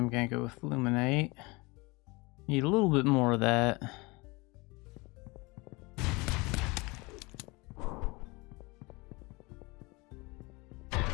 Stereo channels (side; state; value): right; quieter; 25.1 dB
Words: gonna go with Luminite. Need a little bit more of that.